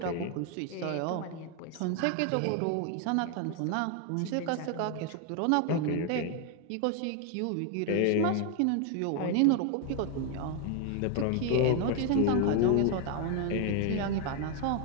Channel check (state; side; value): different; both; correlation 0.01